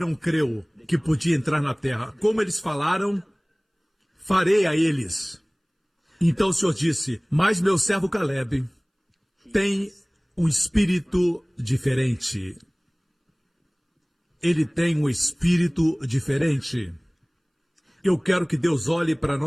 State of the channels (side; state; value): both; identical; correlation 1.00